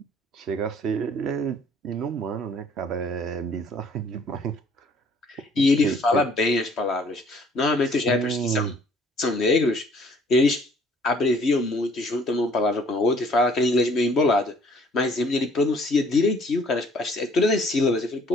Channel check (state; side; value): normal; both; correlation 0.58